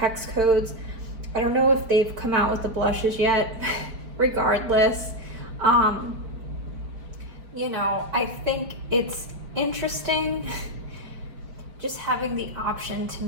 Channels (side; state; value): left; late; 4.5 ms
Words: codes. I don't know if they've come out with the blushes yet. Regardless, you know, I think it's interesting just having the option to